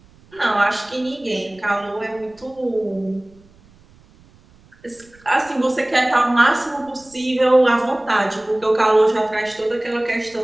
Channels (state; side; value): noise; right; rumble, 28 dB below the sound